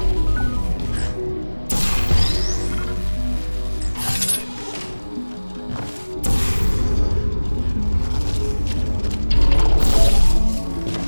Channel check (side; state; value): both; inverted; correlation -1.00